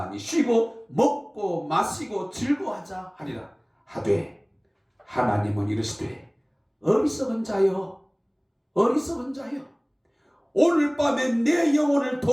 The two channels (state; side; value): identical; both; correlation 1.00